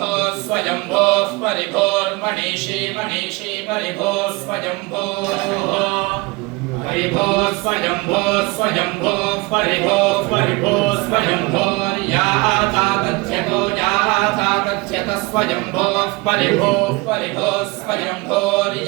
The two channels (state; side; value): quieter; left; 25.0 dB